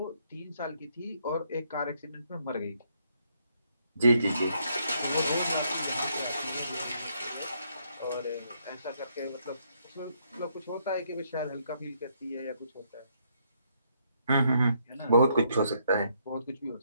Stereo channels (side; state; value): both; inverted; correlation -0.73